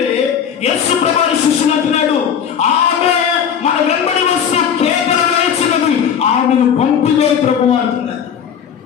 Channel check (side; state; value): right; quieter; 8.0 dB